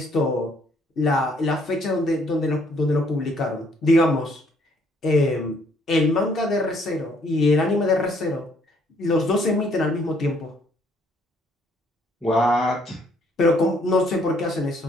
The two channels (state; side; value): normal; both; correlation 0.65